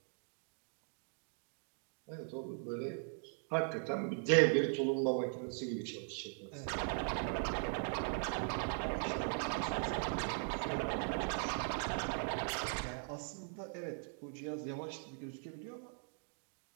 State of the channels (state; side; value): silent; left; 51 dB below the other